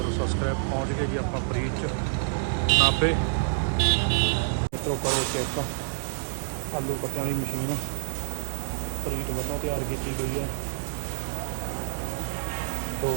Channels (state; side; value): silent; left; digital silence